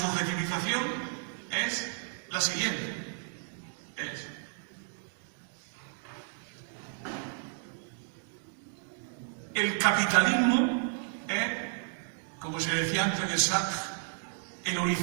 es la siguiente. Es el capitalismo es, como se decía antes de Sartre, el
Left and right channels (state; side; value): silent; left; digital silence